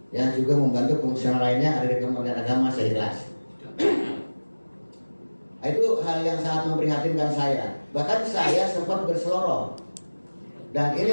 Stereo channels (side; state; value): both; inverted; correlation -1.00